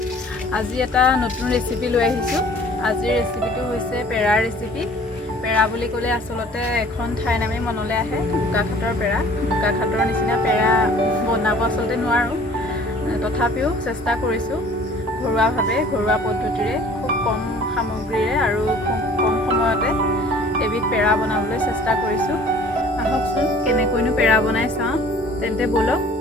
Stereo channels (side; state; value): both; normal; correlation 0.50